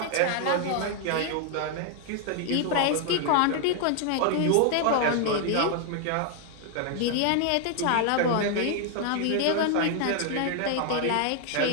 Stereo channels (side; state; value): both; different; correlation 0.00